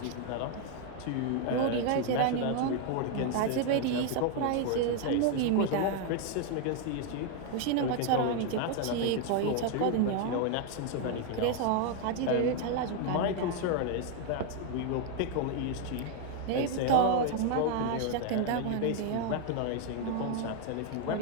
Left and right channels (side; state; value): both; different; correlation 0.01